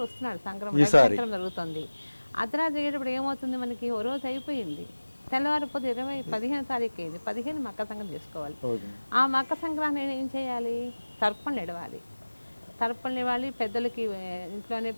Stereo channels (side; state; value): both; inverted; correlation -1.00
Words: వస్తున్నాడు సంక్రమణ జరుగుతుంది. అర్ధరాత్రి అయ్యేటప్పుడు ఏమవుతుంది మనకి, ఓ రోజు అయిపోయింది. తెల్లవారిపోతే 15వ తారీఖు అయింది. 15 మకర సంక్రాంతి చేసుకోవాలి. ఆ మకర సంక్రాంతి ఏం చేయాలి? తర్పణలు ఇవ్వాలి. తర్పణలు ఇవ్వాలి. పెద్దలకి ఇంట్లోనే